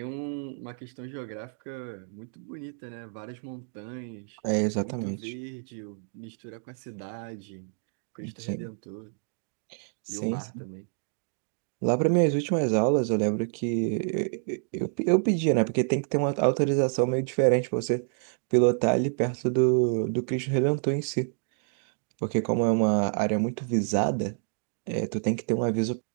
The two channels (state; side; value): silent; left; 59 dB below the other